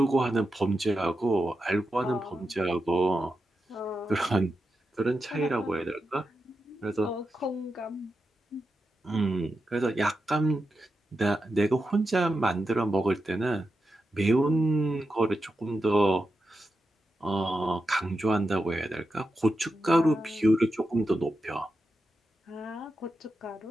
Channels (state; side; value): normal; both; correlation 0.89